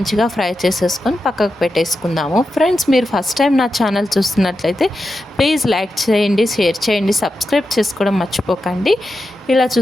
ఫ్రై చేసేసుకొని పక్కకు పెట్టేసుకుందాము. ఫ్రెండ్స్, మీరు ఫస్ట్ టైం నా ఛానల్ చూస్తున్నట్లయితే ప్లీజ్ లైక్ చేయండి, షేర్ చేయండి, సబ్స్క్రైబ్ చేసుకోవడం మర్చిపోకండి. ఇలా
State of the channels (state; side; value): normal; both; correlation 0.89